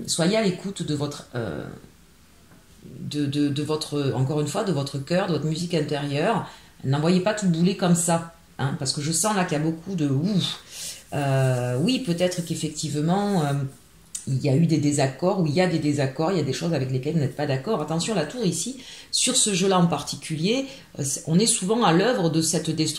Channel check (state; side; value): identical; both; correlation 1.00